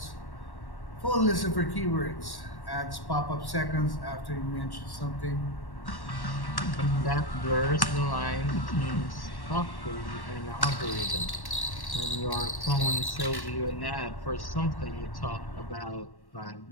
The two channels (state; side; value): late; right; 1.1 ms